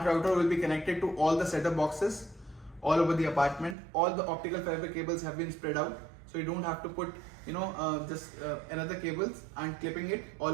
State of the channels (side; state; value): left; drops out; at 3.8 s